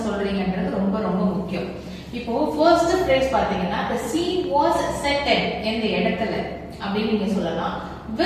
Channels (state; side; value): identical; both; correlation 1.00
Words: சொல்றீங்கன்றது ரொம்ப ரொம்ப முக்கியம். இப்போ ஃபர்ஸ்ட் ஃப்ரேஸ் பாத்தீங்கன்னா the scene was set at எந்த இடத்துல அப்படி நீங்க சொல்லலாம்.